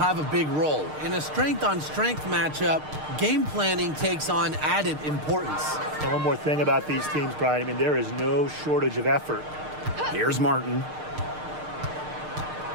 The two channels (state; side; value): late; left; 6.6 ms